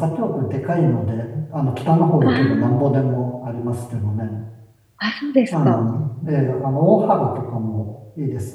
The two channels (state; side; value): identical; both; correlation 1.00